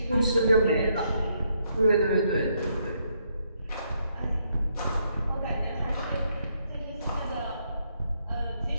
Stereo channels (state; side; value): inverted; both; correlation -0.74